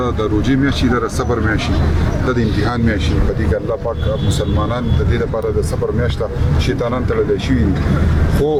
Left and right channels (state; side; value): identical; both; correlation 1.00